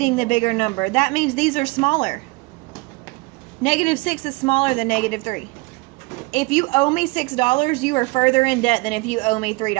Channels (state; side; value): quieter; left; 25.1 dB